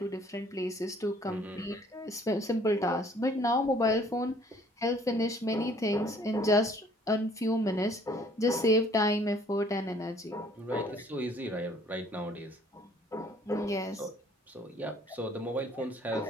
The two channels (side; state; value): both; normal; correlation 0.58